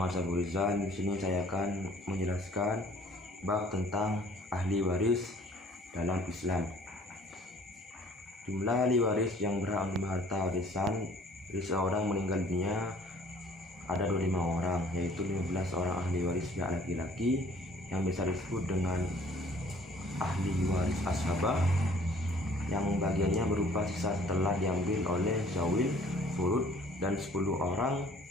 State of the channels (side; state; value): both; normal; correlation 0.55